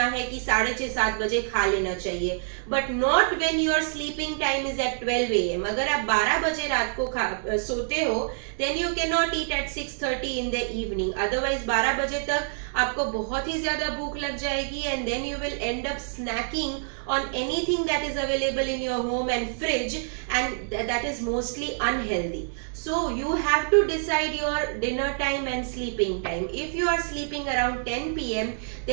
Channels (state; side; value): silent; left; digital silence